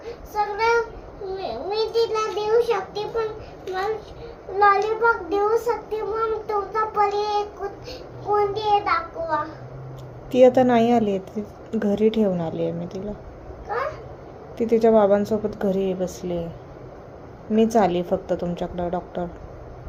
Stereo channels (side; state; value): both; identical; correlation 1.00